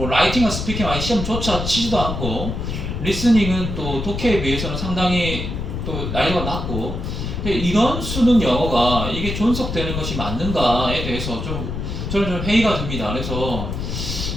라이팅과 스피킹 아예 시험조차 치지도 않고 리스닝은 또 독해에 비해서는 상당히 또 난이도가 낮고 이런 수능 영어가 이게 존속되는 것이 맞는가에 대해서 좀 저는 좀 회의가 듭니다. 그래서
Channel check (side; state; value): left; noise; rumble, 4 dB below the sound